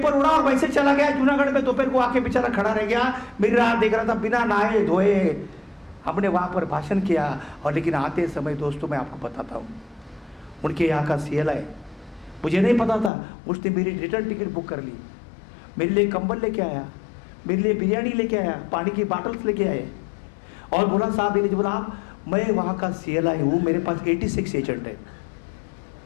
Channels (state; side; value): drops out; right; at 13.1 s